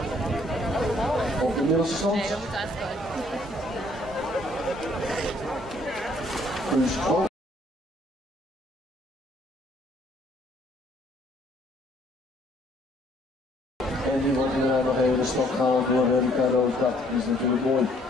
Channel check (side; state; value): both; normal; correlation 0.63